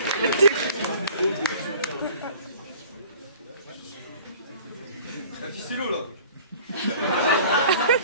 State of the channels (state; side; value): inverted; both; correlation -0.47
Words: La ficello là.